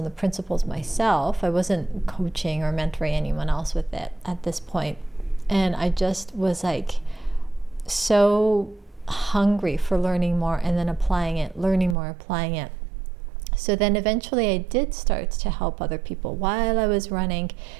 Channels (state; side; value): drops out; left; at 12.0 s